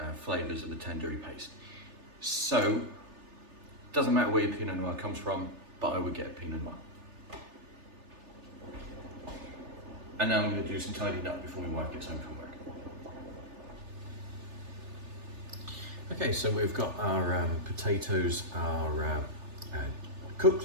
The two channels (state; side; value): late; left; 3.4 ms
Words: flavours of the tandoori paste. So, doesn't matter where your Pinot Noir comes from, but I would get a Pinot Noir. And now I'm going to do some tidying up before my wife gets home from work. Okay, so we've got our potatoes are